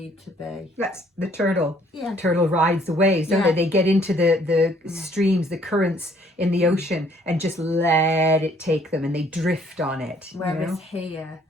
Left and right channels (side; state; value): both; normal; correlation 0.62